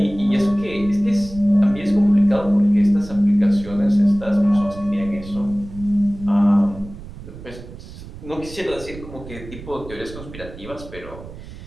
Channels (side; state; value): right; noise; rumble, 14 dB below the sound